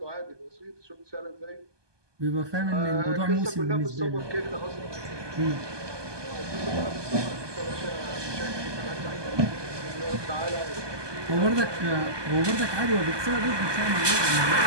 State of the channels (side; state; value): left; late; 1.2 ms